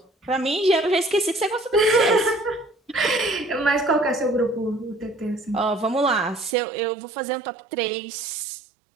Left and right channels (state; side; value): drops out; left; at 6.6 s